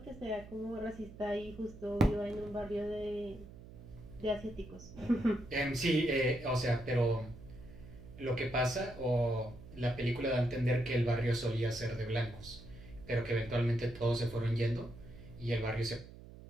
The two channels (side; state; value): right; noise; hum, 16 dB below the sound